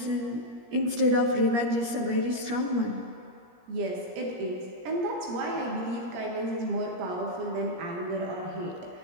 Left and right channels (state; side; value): late; left; 17 ms